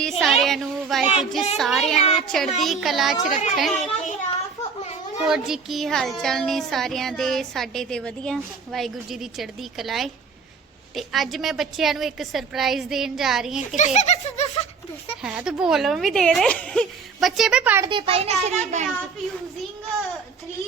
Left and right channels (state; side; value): quieter; left; 5.4 dB